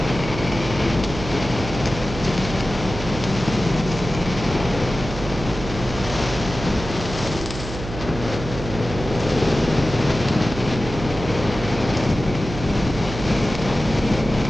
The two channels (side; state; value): right; noise; hum, 9 dB below the sound